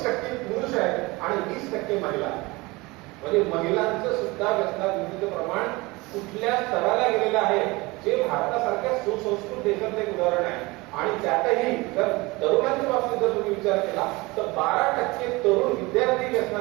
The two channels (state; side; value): quieter; left; 23.3 dB